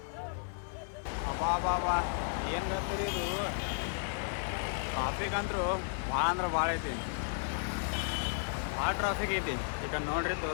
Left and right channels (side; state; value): right; silent; digital silence